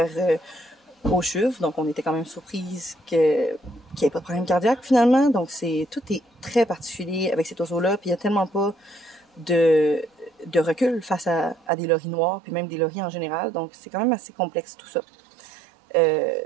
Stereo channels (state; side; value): drops out; left; at 11.7 s